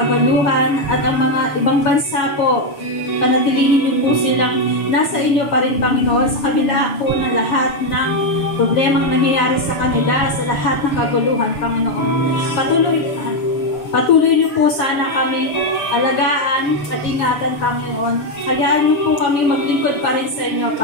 at ang mga ibang bansa po. Panatilihin niyo po silang nasa inyo pa rin, Panginoon, sa kabila po ng lahat ng problemang nangyayari sa kanila, sa lahat ng kaguluhan, Panginoon. Patuloy niyo po sana kami alagaan at ingatan, Panginoon. Hayaan niyo po kami maglingkod pa rin sa inyo,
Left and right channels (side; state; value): right; late; 7.0 ms